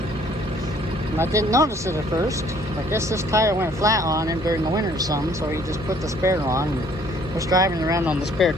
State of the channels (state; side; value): normal; both; correlation 0.60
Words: And I didn't notice it at first. I guess this tire went flat on him during the winter or something, so he just put the spare on and was driving around on the spare